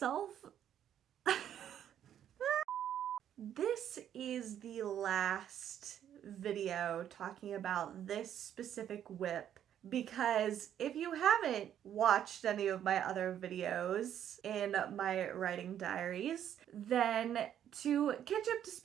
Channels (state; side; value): quieter; left; 10.1 dB